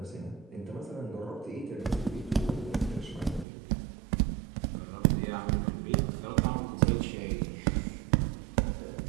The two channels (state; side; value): drops out; left; at 3.5 s